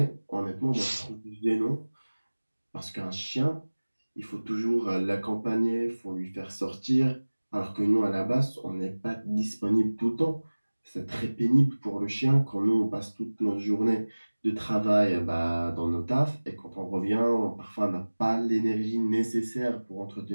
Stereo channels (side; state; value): both; inverted; correlation -1.00